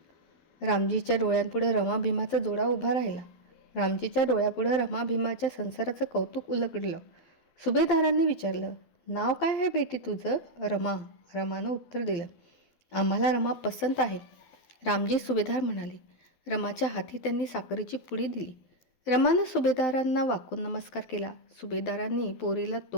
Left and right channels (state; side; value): late; right; 12 ms